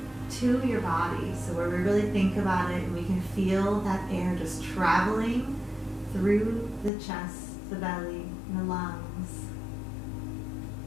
to your body. So where we really think about it and we can feel that air just traveling through the chest, the belly, and the lungs.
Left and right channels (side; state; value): right; drops out; at 6.9 s